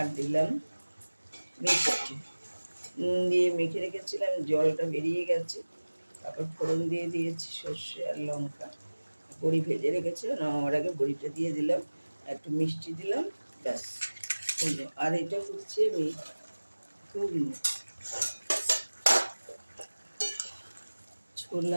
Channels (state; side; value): inverted; both; correlation -1.00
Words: দিলাম মিষ্টি, নুন দিয়ে মেখে রেখেছিলাম, জলটা বেরিয়ে গেছে। তারপর ফোড়ন দিয়ে দিয়েছি সর্ষে আর লঙ্কা, বড়ি ভেজে রেখেছিলাম, নামাবার আগে বড়িটা দিয়ে দিলাম, একটু মিষ্টি দিলাম, ব্যাস হলো। আর এটা করছি আমি ঘুগনি,